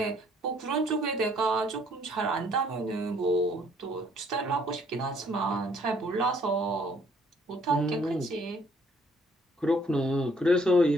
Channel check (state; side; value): normal; both; correlation 0.64